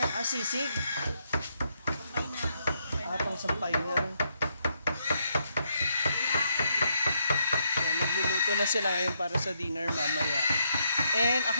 Ah, sisig? Sampay na. Ah, pang sampay na. Ayan, nagluluto na sila ngayon para sa dinner mamaya. And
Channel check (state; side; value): inverted; both; correlation -0.77